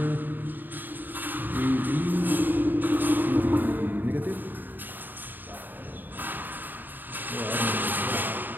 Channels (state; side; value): late; left; 0.090 ms